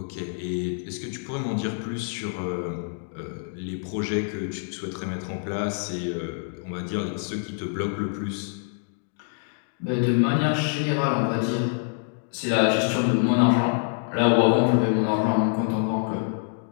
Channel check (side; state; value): right; silent; digital silence